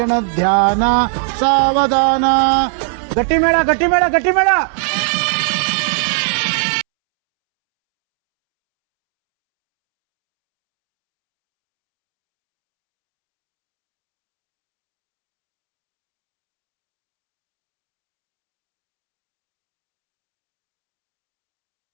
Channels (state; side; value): silent; left; 70 dB below the other